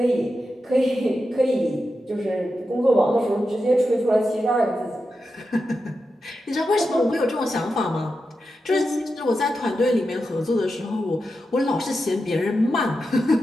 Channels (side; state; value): both; normal; correlation 0.89